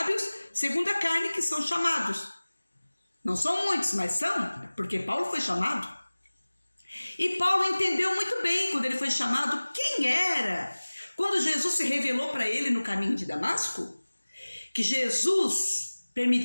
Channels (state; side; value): inverted; both; correlation -1.00